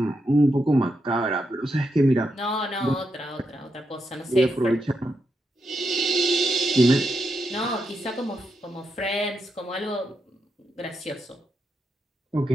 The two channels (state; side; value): normal; both; correlation 0.83